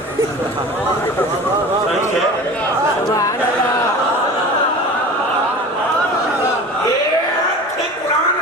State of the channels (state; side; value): normal; both; correlation 0.37